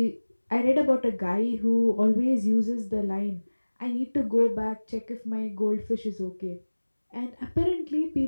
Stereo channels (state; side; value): inverted; both; correlation -1.00